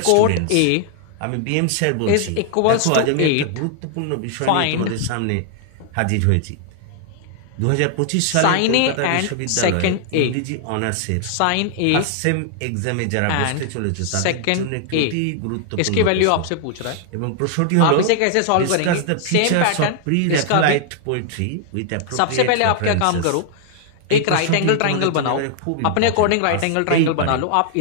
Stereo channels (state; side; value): different; both; correlation 0.00